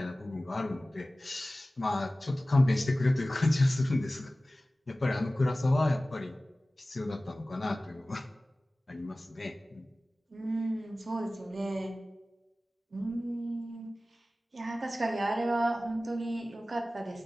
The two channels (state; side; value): normal; both; correlation 0.97